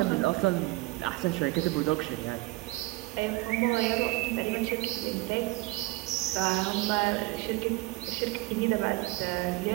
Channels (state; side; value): quieter; left; 22.0 dB